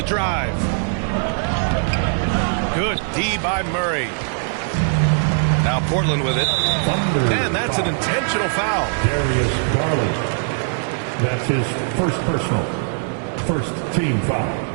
drive. Good D by Murray. Now Portland with it. And that's an intentional foul. Darius Garland. That's his first personal. First team foul.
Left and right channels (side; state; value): left; silent; 58 dB below the other